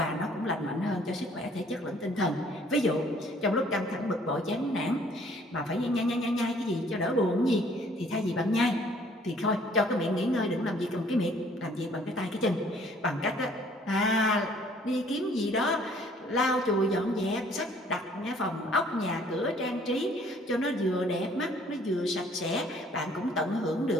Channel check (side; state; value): both; normal; correlation 0.59